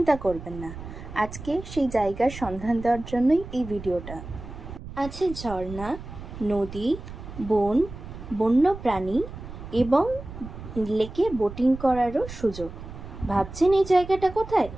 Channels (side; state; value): right; noise; rumble, 12 dB below the sound